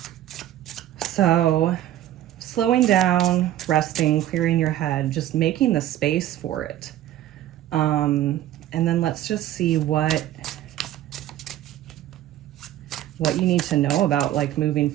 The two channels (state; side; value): quieter; left; 12.7 dB